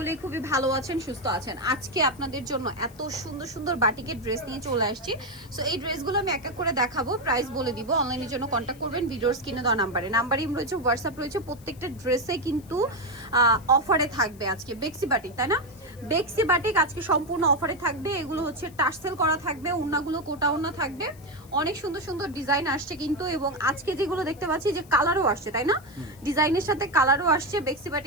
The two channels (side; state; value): left; noise; hiss, 25 dB below the sound